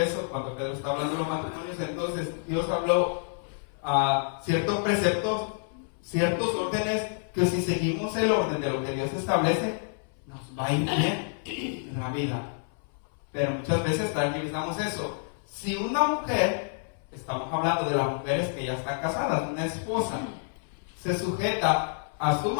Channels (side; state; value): right; silent; 59 dB below the other